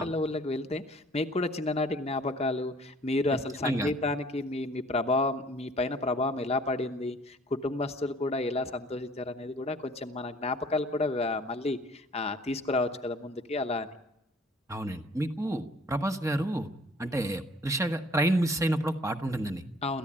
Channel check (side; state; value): both; normal; correlation 0.55